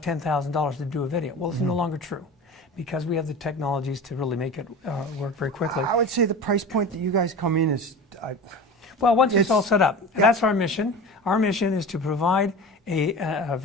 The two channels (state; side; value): normal; both; correlation 0.33